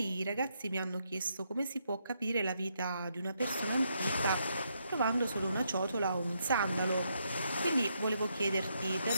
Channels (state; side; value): inverted; both; correlation -0.78